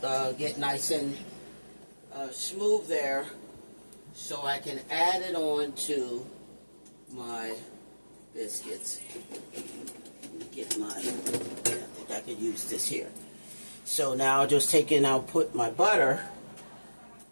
get nice and smooth there, so I can add it on to my biscuits. Let me get my. I think I could use this here. So now I'll just take and I'll put my butter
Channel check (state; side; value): inverted; both; correlation -1.00